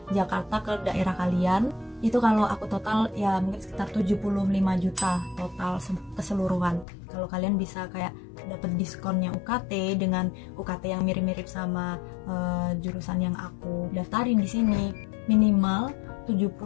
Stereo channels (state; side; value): drops out; right; at 6.9 s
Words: Jakarta, ke daerah kalian. Itu kalau aku total ya mungkin sekitar 75 juta total keseluruhan. Kalau kalian bisa kayak dapat diskonnya UKT dengan UKT yang mirip-mirip sama jurusan yang aku daftarin di sini, minimal